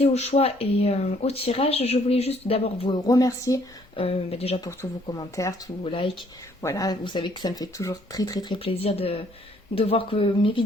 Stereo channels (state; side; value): normal; both; correlation 0.64